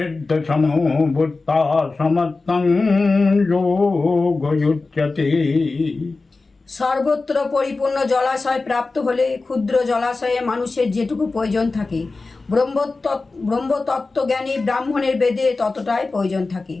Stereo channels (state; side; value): quieter; right; 3.7 dB